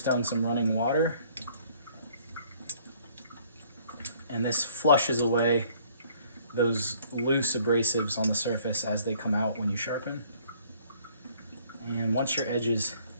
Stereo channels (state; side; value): inverted; both; correlation -0.59